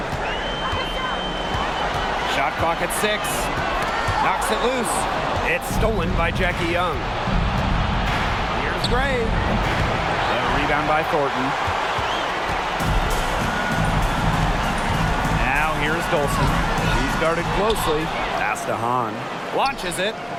Shot clock at 6. Knocks it loose. It's stolen by Jackie Young. Here's Gray. The rebound by Thornton. Now here's Dolson. He's guarded closely. Pass to Hahn. Launches it.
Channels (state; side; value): identical; both; correlation 1.00